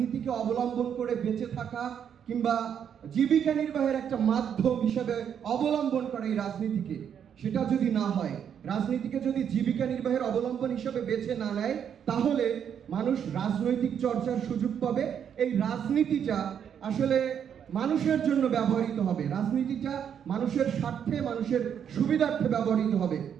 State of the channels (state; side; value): quieter; left; 8.4 dB